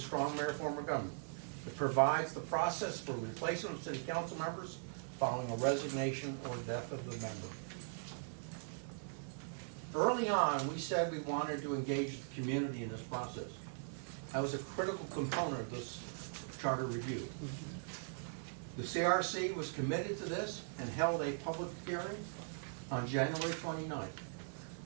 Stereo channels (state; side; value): silent; left; 51 dB below the other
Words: mayor form of government. It provides the process for replacement of city council members following a resignation or death of the member. Early on, we said we wanted to engage the community in this process. That was a critical component of this charter review. The CRC was committed to this and held a public hearing on January 29th